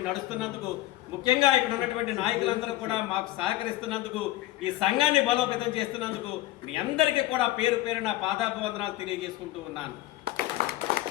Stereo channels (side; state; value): right; quieter; 16.1 dB